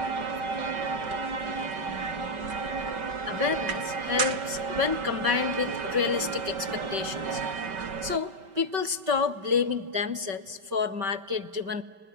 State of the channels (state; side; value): late; left; 5.2 ms